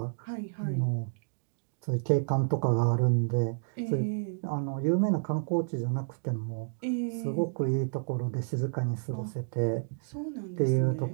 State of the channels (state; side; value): silent; left; digital silence